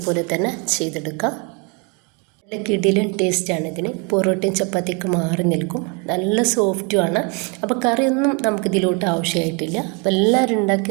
തന്നെ ചെയ്തെടുക്കാം. നല്ല കിടിലൻ ടേസ്റ്റാണ് ഇതിന്. പൊറോട്ടയും ചപ്പാത്തിയൊക്കെ മാറി നിൽക്കും. നല്ല സോഫ്റ്റുമാണ്. അപ്പോൾ കറിയൊന്നും നമുക്കിതിലോട്ട് ആവശ്യമായിട്ടില്ല. അപ്പോൾ എല്ലാവരും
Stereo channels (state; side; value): quieter; left; 31.8 dB